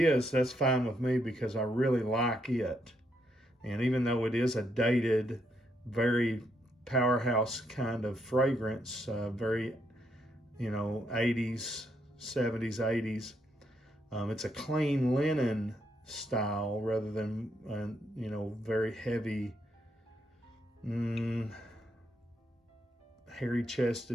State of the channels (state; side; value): normal; both; correlation 0.77